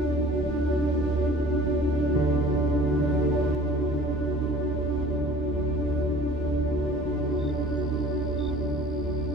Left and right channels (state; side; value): normal; both; correlation 0.47